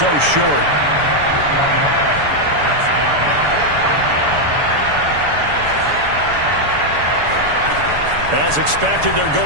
short. As expected, they're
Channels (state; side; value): late; left; 7.0 ms